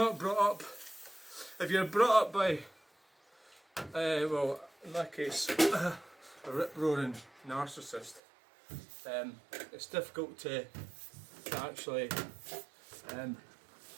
brought up, if you're brought up by, well, in that case, a rip-roaring narcissist, it's difficult to actually,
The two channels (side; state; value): left; drops out; at 8.2 s